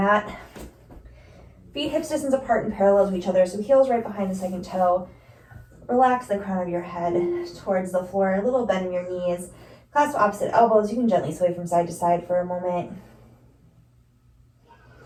Feet hips distance apart and parallel to each other, so heels right behind the second toe. Relax the crown of your head towards the floor, a little bend in your knees. Clasp opposite elbows. You can gently sway from side to side for a moment.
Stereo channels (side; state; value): both; identical; correlation 1.00